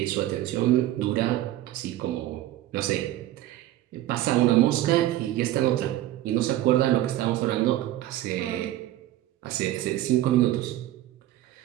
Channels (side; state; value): left; quieter; 14.3 dB